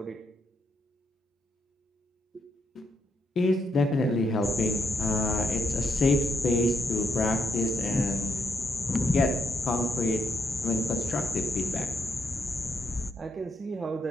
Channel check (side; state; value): both; normal; correlation 0.79